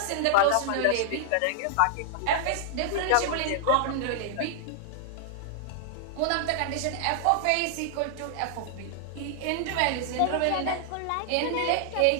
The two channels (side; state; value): both; different; correlation -0.01